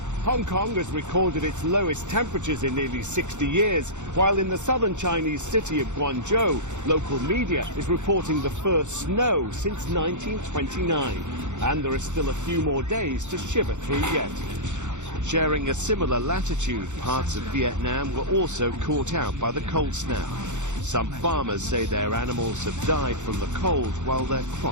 Hong Kong has recorded its lowest temperatures in nearly 60 years, while in the southern Chinese city of Guangzhou, local media is reporting the first snow since 1929. And there are still a few more days to shiver through yet. Sharing a similar latitude, parts of Vietnam were also caught out by the cold snap. Some farmers say their animals have died from the cold while their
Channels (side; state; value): left; late; 0.84 ms